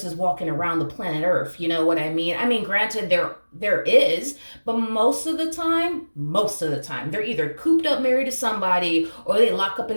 walking around the planet Earth. You know what I mean? I mean, granted, there is, but most of the time, they're either cooped up, married to somebody, or they lock up in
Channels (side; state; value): both; inverted; correlation -1.00